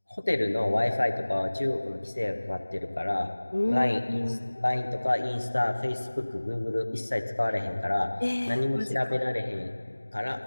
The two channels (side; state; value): both; inverted; correlation -1.00